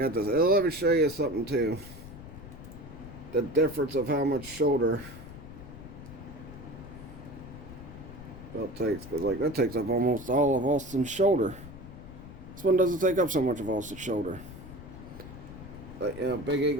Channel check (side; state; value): left; noise; rumble, 14 dB below the sound